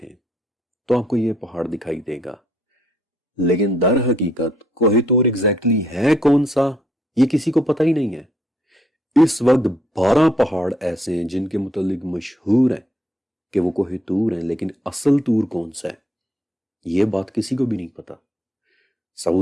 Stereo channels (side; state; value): both; normal; correlation 0.70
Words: تو آپ کو یہ پہاڑ دکھائی دے گا، لیکن در حقیقت کوہ طور ایگزیکٹلی ہے کون سا یہ کسی کو پتہ ہی نہیں ہے۔ اس وقت 12 پہاڑ ایسے ہیں جن کے متعلق مشہور ہیں کہ وہ کوہ طور ہیں، لیکن اصل طور کون سا ہے یہ بات کسی کو بھی نہیں پتا۔